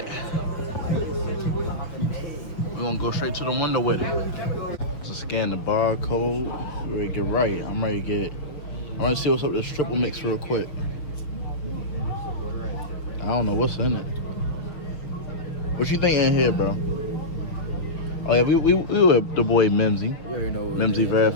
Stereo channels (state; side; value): late; right; 6.7 ms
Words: We're gonna go straight to the window with it. Just scan the barcode. Ready to get right. I'm ready to see what's up with this triple mix real quick. I don't know what's in it. What you think in here, bro? Oh yeah, we were the boy Mimsy. You already know Mimsy